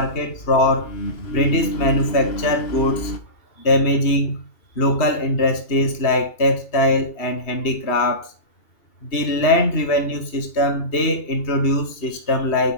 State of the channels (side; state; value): right; late; 2.8 ms